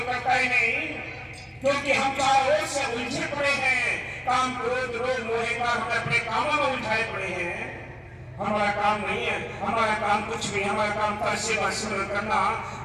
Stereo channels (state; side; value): identical; both; correlation 1.00